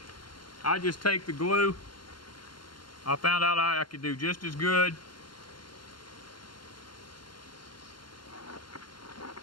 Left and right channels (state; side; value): late; right; 0.72 ms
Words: I just take the glue. I found out I could do just as good